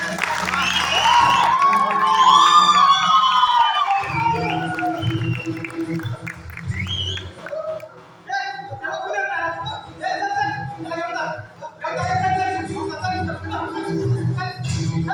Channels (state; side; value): identical; both; correlation 1.00